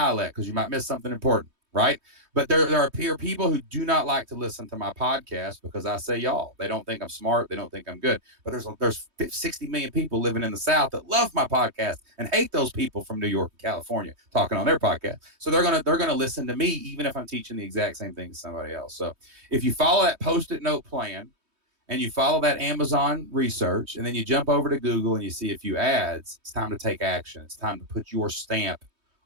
because you might miss something important, right? But there are people who do not like to listen to my podcast because I say y'all. They don't think I'm smart. They don't think I'm good. But there's 60 million people living in the South that love my podcast and hate those people from New York and California talking on their podcast. So they're gonna listen to me even if I'm teaching the exact same thing to somebody else. So if you follow that Post-it note plan and you follow that Amazon research and then you jump over to Google and you see a few ads, it's time to take action. It's time to put your stamp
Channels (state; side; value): late; left; 3.2 ms